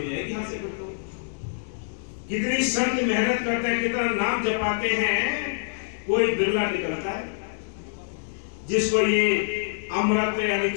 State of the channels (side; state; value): right; silent; digital silence